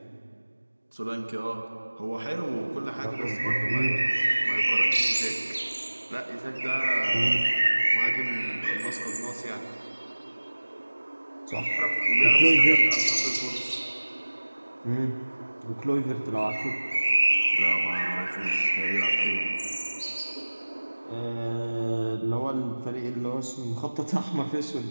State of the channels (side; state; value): both; inverted; correlation -1.00